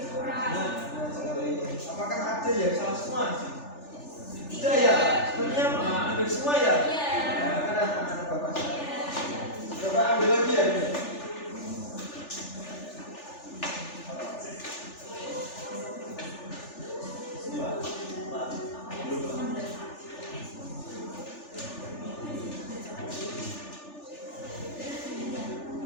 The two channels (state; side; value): late; right; 3.4 ms